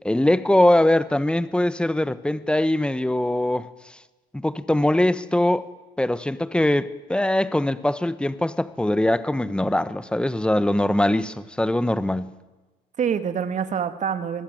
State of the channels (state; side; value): normal; both; correlation 0.94